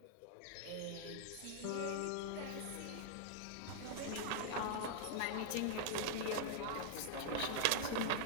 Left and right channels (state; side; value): different; both; correlation -0.01